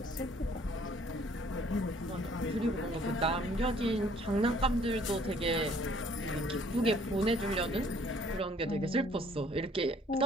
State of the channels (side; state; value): both; normal; correlation 0.59